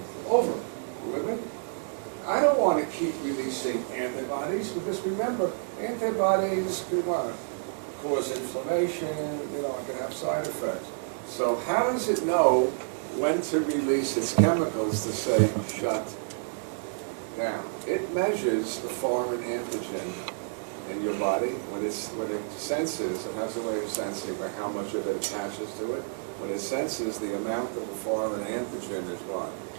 over. With it? I don't want to keep releasing antibodies because remember, antibodies can cause inflammation, it can have side effects. So how does it know when to release its chemicals to say shut down? It measures the foreign antigen in your body. When it senses, it has a way of sensing how much of it attaches to it. When it senses the amount of the foreign antigen is what?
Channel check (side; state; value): left; silent; digital silence